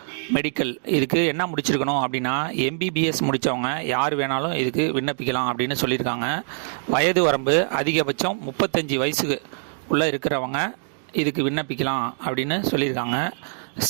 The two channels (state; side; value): silent; left; digital silence